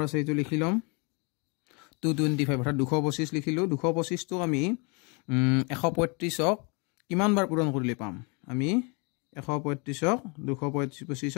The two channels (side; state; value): right; quieter; 31.9 dB